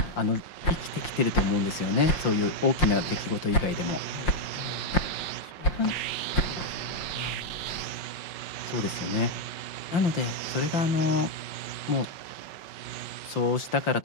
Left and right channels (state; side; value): late; right; 5.7 ms